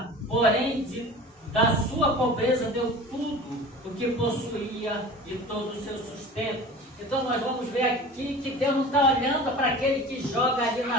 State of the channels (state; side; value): normal; both; correlation 0.38